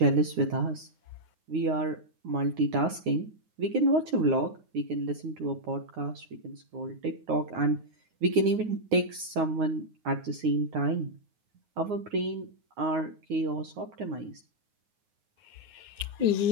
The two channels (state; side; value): late; left; 9.5 ms